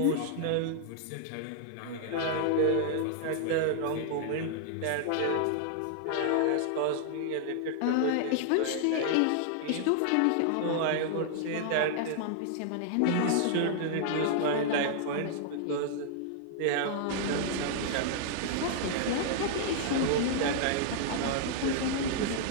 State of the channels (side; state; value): both; different; correlation -0.01